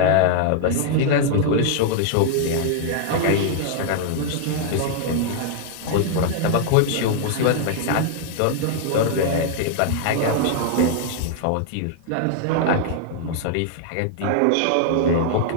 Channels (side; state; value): both; different; correlation -0.01